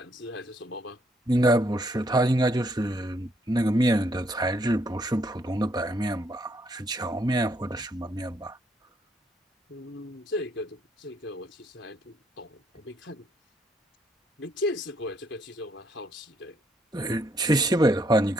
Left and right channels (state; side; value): normal; both; correlation 0.71